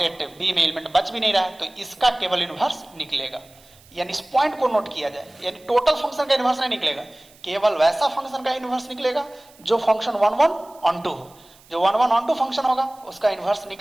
बी में एलिमेंट बच भी नहीं रहा है, तो इसका केवल इनवर्स निकलेगा। यानी इस पॉइंट को नोट किया जाए, यानी टोटल फंक्शन का इनवर्स नहीं निकलेगा, केवल वैसा फंक्शन का इनवर्स निकलेगा जो फंक्शन 1 1 on 2 हो। जो 1 1 on 2 फंक्शन होगा उसका इनवर्स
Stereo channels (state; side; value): noise; right; hiss, 27 dB below the sound